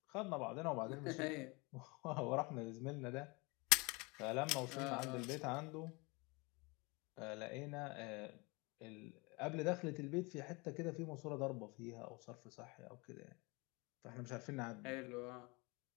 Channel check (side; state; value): right; quieter; 27.4 dB